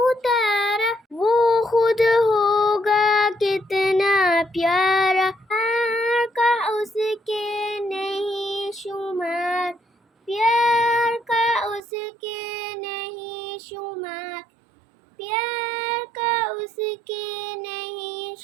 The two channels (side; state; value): left; drops out; at 11.8 s